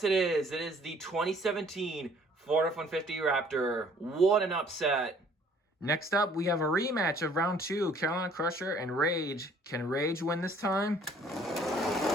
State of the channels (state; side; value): normal; both; correlation 0.58